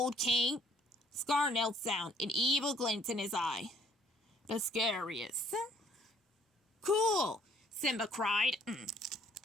king. Scar knelt down, an evil glint in his eye. The scariest. Cool, Simba cried.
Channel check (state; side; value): normal; both; correlation 0.61